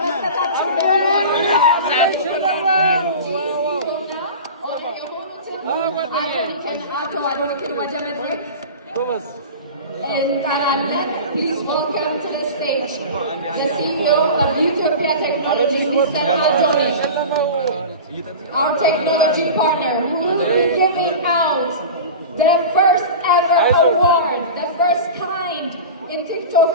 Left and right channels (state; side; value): inverted; both; correlation -0.31